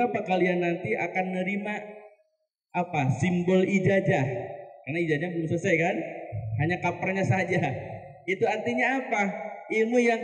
kalian nanti akan menerima apa? Simbol ijazah. Karena ijazah belum selesai kan? Hanya kapernya saja. Itu artinya apa? Ilmu yang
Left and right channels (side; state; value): both; identical; correlation 1.00